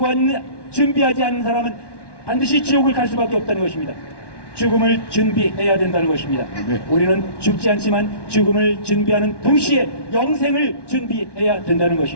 않는 사람은 반드시 지옥을 갈 수밖에 없다는 것입니다. 죽음을 준비해야 된다는 것입니다. 우리는 죽지 않지만 죽음을 준비하는 동시에 영생을 준비해야 된다는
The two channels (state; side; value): late; right; 1.1 ms